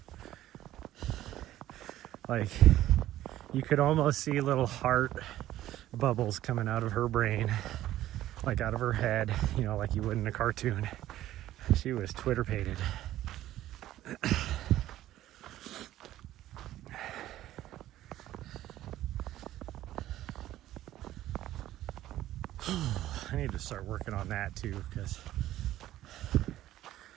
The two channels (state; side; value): quieter; left; 13.9 dB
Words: like, you could almost see little heart bubbles coming out of her brain, like out of her head, you know, like you would in a cartoon. She was Twitter-pated. I need to start working on that too, because the